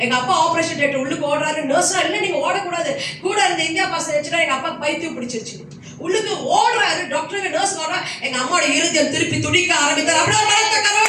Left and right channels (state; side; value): identical; both; correlation 1.00